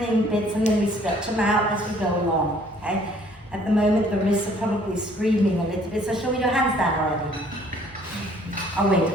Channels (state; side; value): normal; both; correlation 0.59